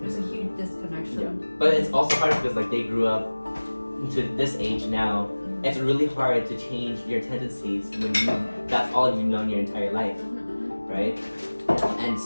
There's a huge disconnection. Yeah. But it's also hard because like they grew up into this age now. It's really hard to change your tendencies when that's all you've known your entire life, right? And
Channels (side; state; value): both; inverted; correlation -1.00